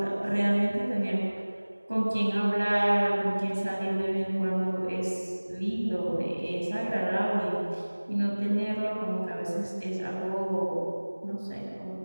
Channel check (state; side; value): inverted; both; correlation -1.00